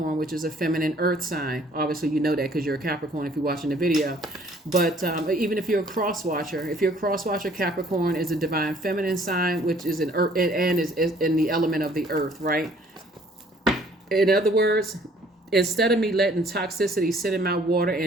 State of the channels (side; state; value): both; normal; correlation 0.58